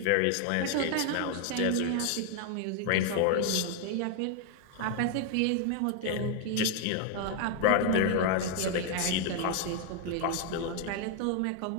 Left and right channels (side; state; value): both; different; correlation 0.01